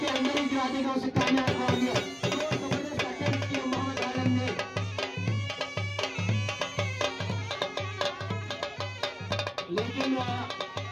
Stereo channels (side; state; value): both; identical; correlation 1.00